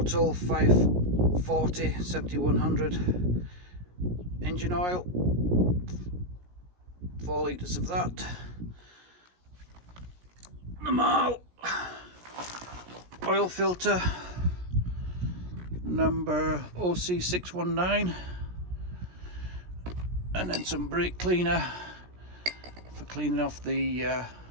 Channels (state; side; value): late; left; 17 ms